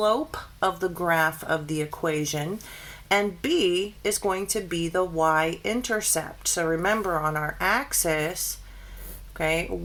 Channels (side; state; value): both; identical; correlation 1.00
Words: of the graph of the equation, and b is going to be the y-intercept. So remember, on our axis, okay,